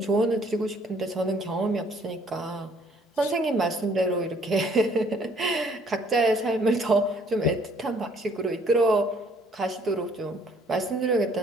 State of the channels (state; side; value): normal; both; correlation 0.62